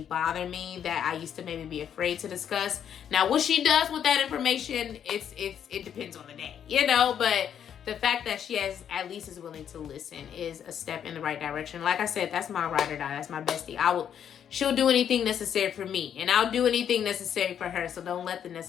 bother me that I used to maybe be afraid to discuss. Now, what she does with that information, it depends on the day, you know. But the fact that she at least is willing to listen is a step in the right direction. Like I said, that's my ride or die. That's my bestie. She'll do anything necessary for me, and I'll do anything necessary for her. So don't let the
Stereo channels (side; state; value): right; quieter; 8.9 dB